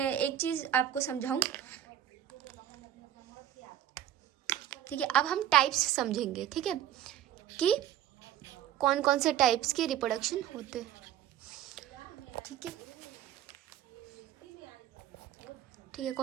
चीज़ आपको समझाऊं। ठीक है। अब हम टाइप्स समझेंगे। ठीक है, कि कौन कौन से टाइप्स के रिप्रोडक्शन होते हैं। ठीक है,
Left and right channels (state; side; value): quieter; left; 11.2 dB